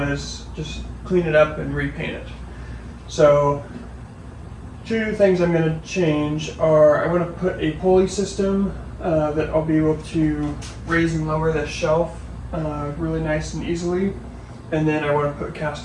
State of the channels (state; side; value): identical; both; correlation 1.00